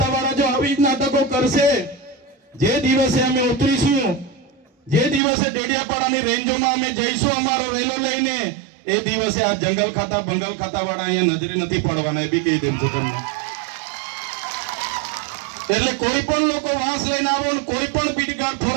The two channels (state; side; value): drops out; left; at 5.2 s